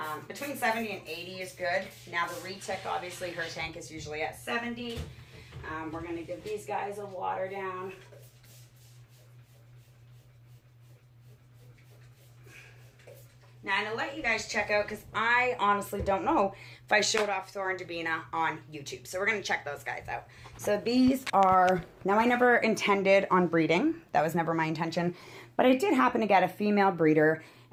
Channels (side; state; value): both; identical; correlation 1.00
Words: between 70 and 80 is good. Now the retic, obviously her tank is usually at 70. We're going to give these guys a water down. Now, I'm going to let you guys check out, because I honestly don't know if I showed off Thor and Davina on YouTube. So we're going to check those guys out. So these are, now I never intended on breeding. That was never my intention. But I did happen to get a female breeder,